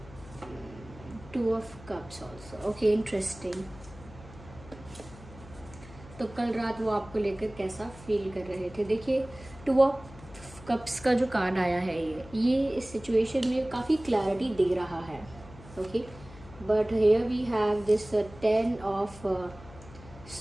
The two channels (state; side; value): noise; left; hum, 19 dB below the sound